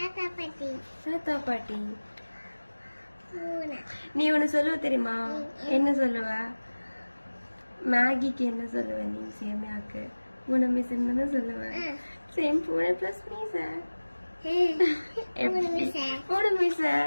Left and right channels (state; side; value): inverted; both; correlation -1.00